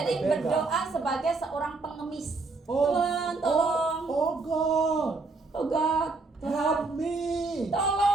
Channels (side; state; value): left; quieter; 3.7 dB